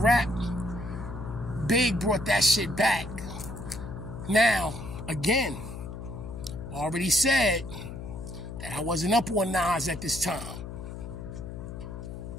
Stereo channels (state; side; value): noise; left; hum, 9 dB below the sound